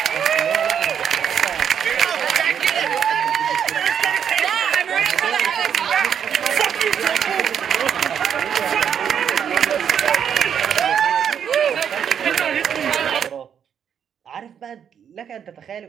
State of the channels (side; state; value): left; quieter; 8.2 dB